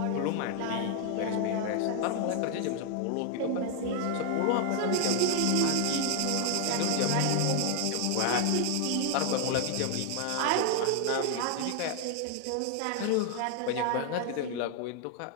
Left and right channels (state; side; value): different; both; correlation 0.00